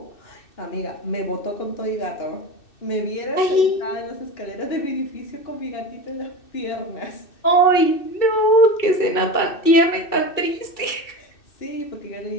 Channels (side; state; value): right; late; 2.6 ms